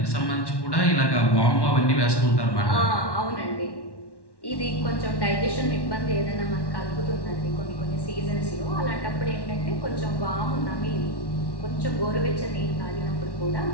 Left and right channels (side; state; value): right; late; 1.1 ms